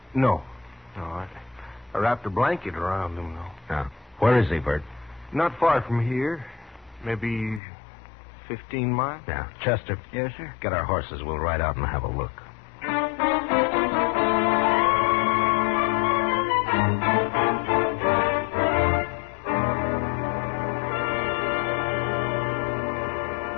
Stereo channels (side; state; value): right; drops out; at 7.6 s